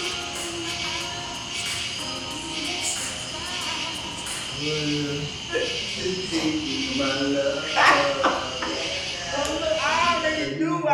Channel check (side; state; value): both; identical; correlation 1.00